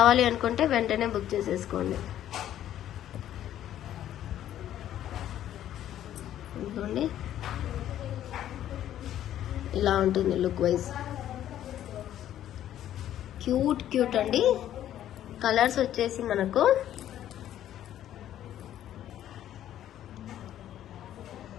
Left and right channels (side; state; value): right; quieter; 11.7 dB